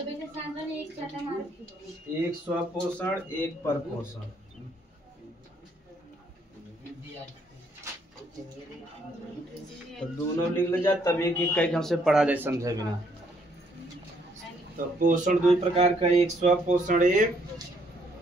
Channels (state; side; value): normal; both; correlation 0.69